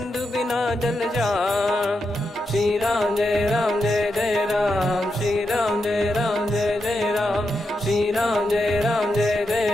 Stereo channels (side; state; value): both; normal; correlation 0.86